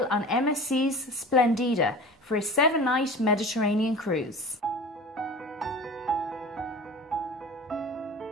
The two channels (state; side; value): normal; both; correlation 0.37